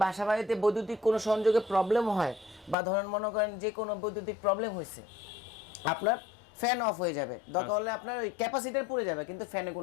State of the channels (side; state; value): right; drops out; at 2.8 s